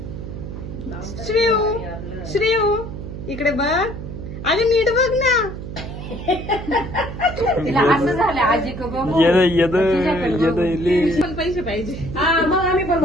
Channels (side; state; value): right; noise; hum, 9 dB below the sound